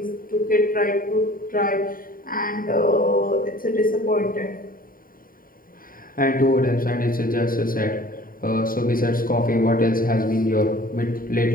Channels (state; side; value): late; right; 0.41 ms